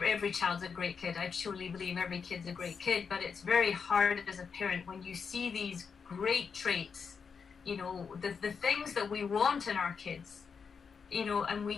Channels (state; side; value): quieter; right; 5.9 dB